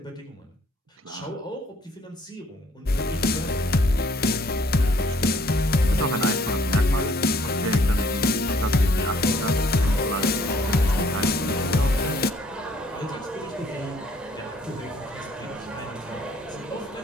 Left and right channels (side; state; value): both; normal; correlation 0.62